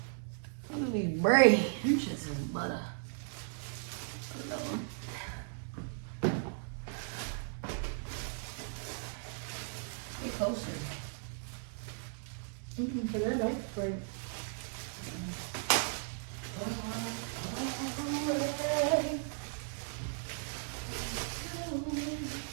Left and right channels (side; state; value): left; silent; digital silence